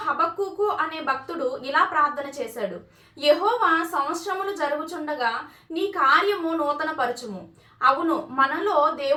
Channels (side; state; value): both; identical; correlation 1.00